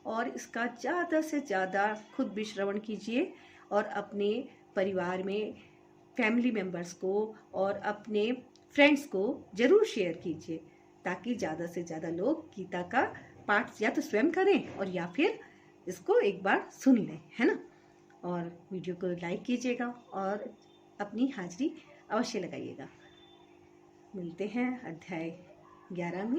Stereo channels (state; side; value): identical; both; correlation 1.00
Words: और इसका ज़्यादा से ज़्यादा खुद भी श्रवण कीजिए और अपने परिवार में फैमिली मेम्बर्स को और अपने फ्रेंड्स को ज़रूर शेयर कीजिए ताकि ज़्यादा से ज़्यादा लोग गीता का पाठ या तो स्वयं करें और या फिर इसको एक बार सुन लें, है ना। और वीडियो को लाइक कीजिएगा और अपनी हाजिरी अवश्य लगाइएगा। मिलते हैं अध्याय 11